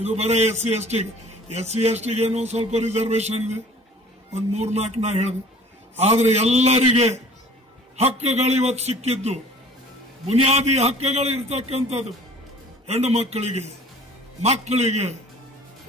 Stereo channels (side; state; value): both; normal; correlation 0.48